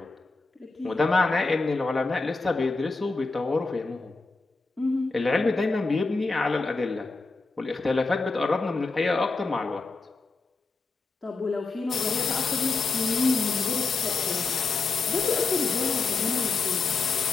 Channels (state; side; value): quieter; right; 3.9 dB